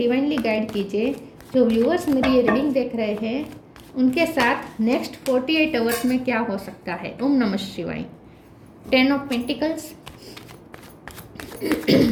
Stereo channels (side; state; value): both; identical; correlation 1.00